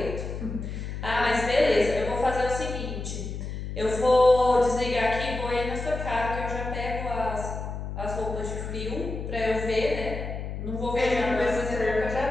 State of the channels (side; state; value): left; noise; hum, 6 dB below the sound